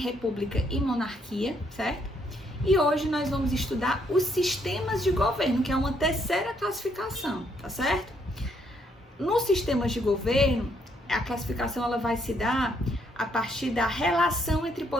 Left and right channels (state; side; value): normal; both; correlation 0.72